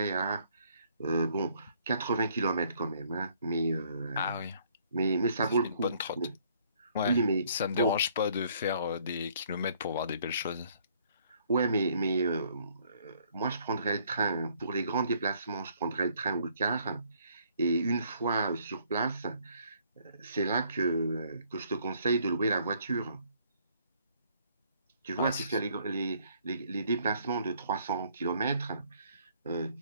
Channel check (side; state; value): both; inverted; correlation -0.64